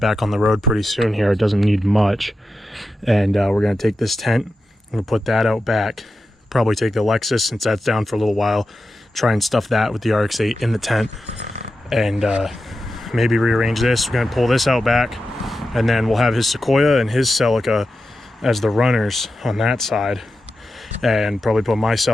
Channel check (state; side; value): normal; both; correlation 0.90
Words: on the road pretty soon here. It doesn't need much. And we're going to take this tent, we're going to put that out back, probably take the Lexus since that's down for a little while, try and stuff that with the RX-8 in the tent, and maybe rearrange this. We're going to pull this out back, and then we'll have his Sequoia and his Celica as the runners on that side, and probably put my